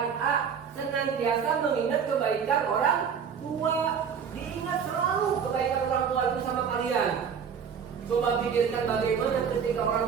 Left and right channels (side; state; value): left; quieter; 7.0 dB